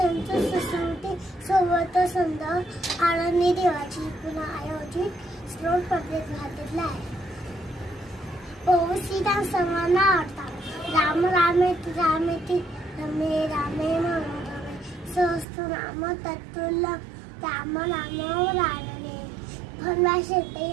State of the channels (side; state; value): left; drops out; at 15.5 s